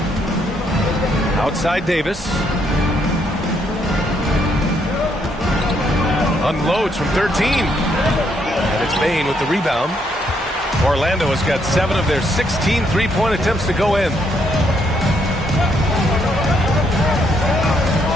Outside Davis. Unloads from 13. And it's Bain with the rebound. Orlando has got 7 of their 16 3-point attempts to go in.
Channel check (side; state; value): both; normal; correlation 0.73